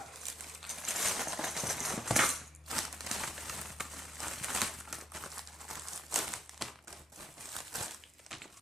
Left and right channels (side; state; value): both; normal; correlation 0.76